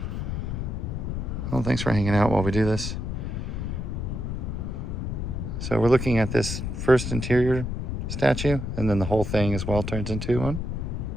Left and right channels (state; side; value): noise; left; rumble, 3 dB below the sound